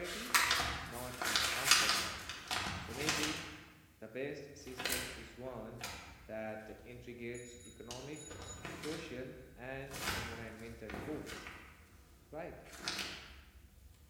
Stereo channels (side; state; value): both; identical; correlation 1.00